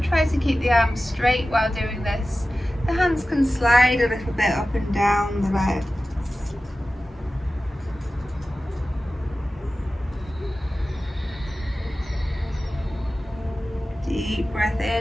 try to keep the arms straight while doing this. The hands can slide a little bit up and down the legs. Deep breath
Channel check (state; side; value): normal; both; correlation 0.95